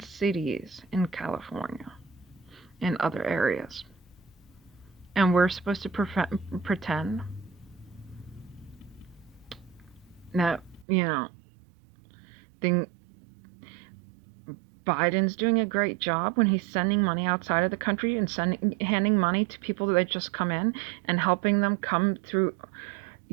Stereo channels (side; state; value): left; drops out; at 10.9 s